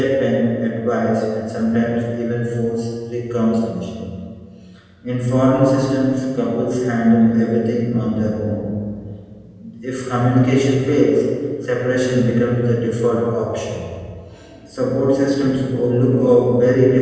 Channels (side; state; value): both; identical; correlation 1.00